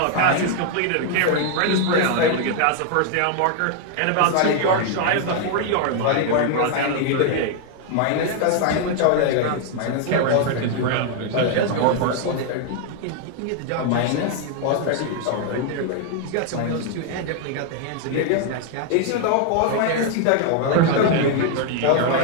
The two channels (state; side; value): different; both; correlation 0.00